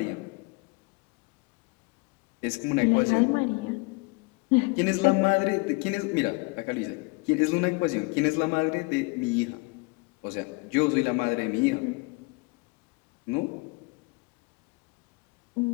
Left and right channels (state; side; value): quieter; right; 27.8 dB